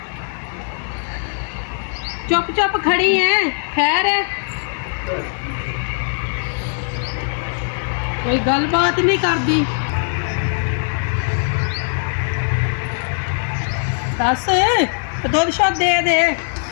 चुप चुप खड़ी हैं, खैर है कोई गलबात नहीं करती। दस दुध शुद्ध दे दे,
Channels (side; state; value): right; silent; 62 dB below the other